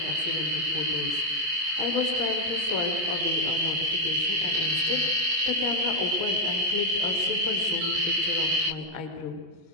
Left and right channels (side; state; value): left; late; 25 ms